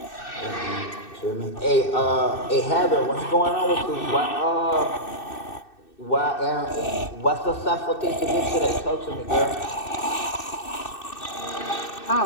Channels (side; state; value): right; late; 2.6 ms